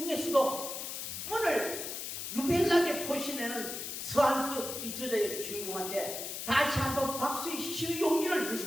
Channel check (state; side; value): noise; left; hiss, 6 dB below the sound